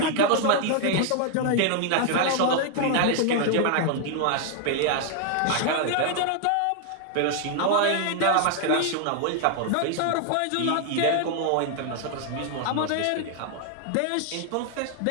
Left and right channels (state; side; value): different; both; correlation 0.00